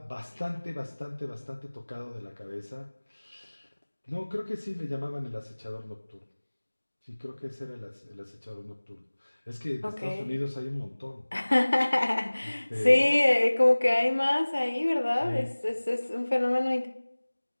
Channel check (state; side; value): inverted; both; correlation -1.00